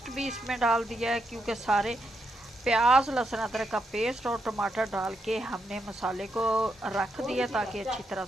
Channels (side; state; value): both; normal; correlation 0.81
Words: भी इसमें डाल दिया है, क्योंकि सारे प्याज, लहसुन अदरक का पेस्ट और टमाटर डाल के हमने मसाले को रख दिया, ताकि अच्छी तरह